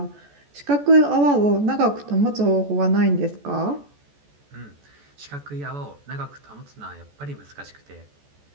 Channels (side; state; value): left; late; 14 ms